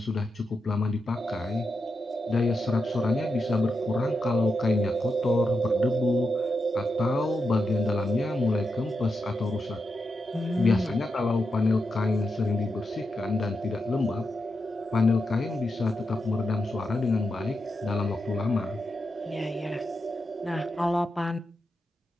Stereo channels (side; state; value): both; normal; correlation 0.86